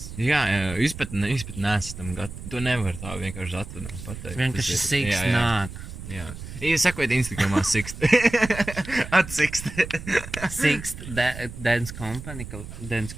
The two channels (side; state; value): right; noise; rumble, 11 dB below the sound